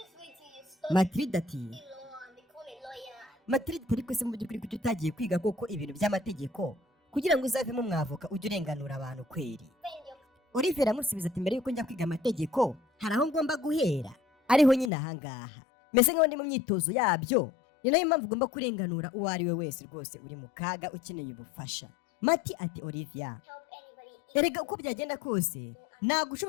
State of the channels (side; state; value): right; drops out; at 14.9 s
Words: Matilda ati Matilda ariko se mu by'ukuri kuki utagiye kwiga koko ibintu by'amategeko kugira ngo uzavemo umwavoka ujye urenganura abantu kweri? Olivier aramusubiza ati mbere yuko njya kwiga amategeko hari aho ngomba guhera, ariho nyine ahangaha meze nk'aho ndi mu myitozo yabyo, ni nayo mpamvu ugomba kurenganura uwo ari we wese rwose uri mu kaga ukeneye ubufasha. Mati ati Olivia erega uko byagenda kose ntabwo